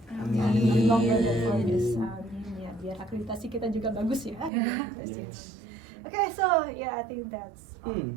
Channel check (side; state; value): left; drops out; at 4.5 s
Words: Amin. Not longer than 4 years. Amin ya. Biar akreditasi kita juga bagus ya. Akreditasi. Okay, so yeah, I think that's all.